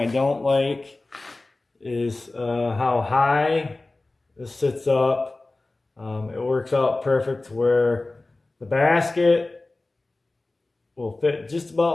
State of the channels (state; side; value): quieter; right; 3.1 dB